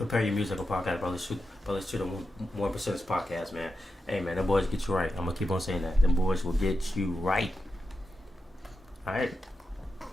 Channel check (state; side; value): normal; both; correlation 0.89